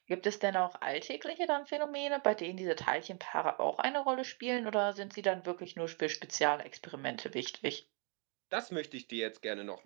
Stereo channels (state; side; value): quieter; left; 36.9 dB